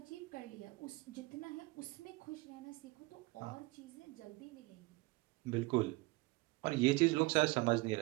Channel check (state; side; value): quieter; left; 22.6 dB